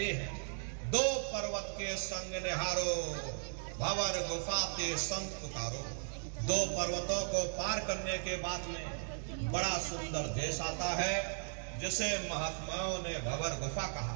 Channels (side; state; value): left; silent; digital silence